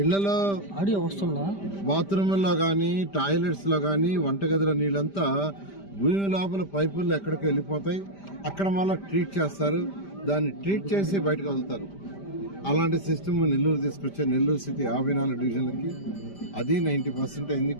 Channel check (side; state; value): right; late; 5.0 ms